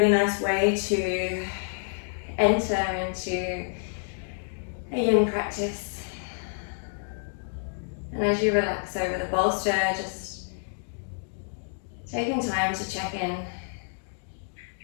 nice way to enter into a yin practice. And as you relax over the bolster, just taking time to check in.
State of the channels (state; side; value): silent; right; digital silence